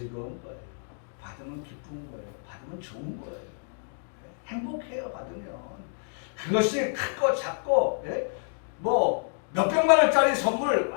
거예요. 받으면 기쁜 거예요. 받으면 좋은 거예요. 행복해요. 받으면. 그것이 크고 작고 뭐 몇백만 원짜리 선물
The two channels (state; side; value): silent; right; 59 dB below the other